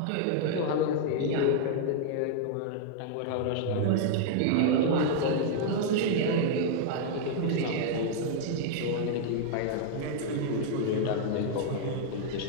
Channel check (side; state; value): both; different; correlation -0.01